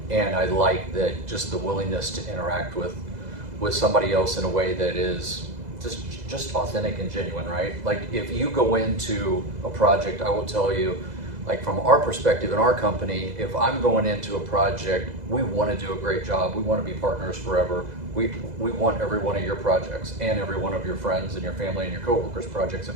and I like that, just the willingness to interact with somebody else in a way that is just authentic and genuine, right? Like, if you go into a project, I will tell you, like, from our perspective in our company, if I'm going into a project, we want to do a great job. We want to be partners forever. We want every one of your projects and every one of your friends and your family and your coworkers' projects,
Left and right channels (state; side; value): late; left; 2.0 ms